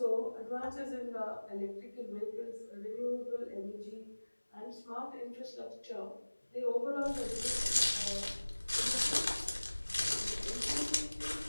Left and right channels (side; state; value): both; inverted; correlation -1.00